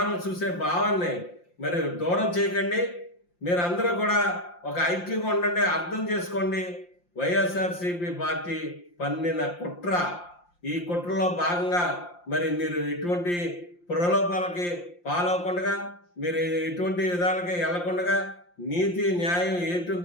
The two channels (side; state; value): right; late; 5.7 ms